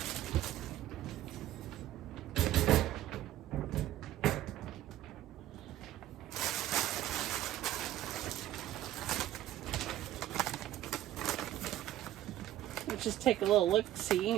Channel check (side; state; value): left; quieter; 13.4 dB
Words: Just take a little look-see